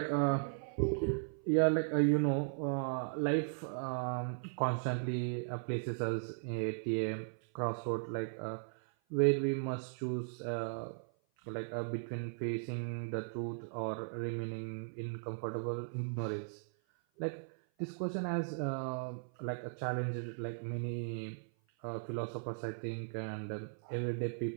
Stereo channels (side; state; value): left; silent; 53 dB below the other